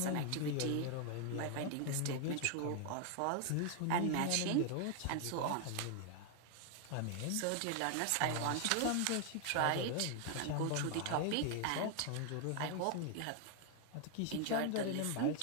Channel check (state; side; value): different; both; correlation 0.00